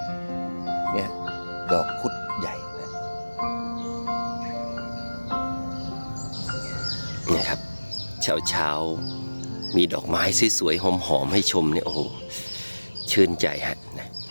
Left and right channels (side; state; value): both; inverted; correlation -1.00